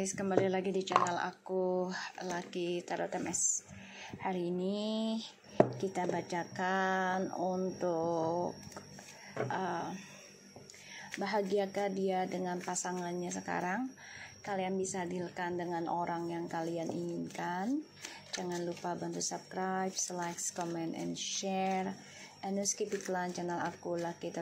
kembali lagi di channel aku Lucky Tarot MS. Hari ini kita bacakan untuk bahagiakah dia dengan pasangannya sekarang. Kalian bisa dealkan dengan orang yang kalian inginkan. Jangan lupa bantu subscribe, like, comment, and share. And skip iklan channel aku Lucky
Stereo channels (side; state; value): both; identical; correlation 1.00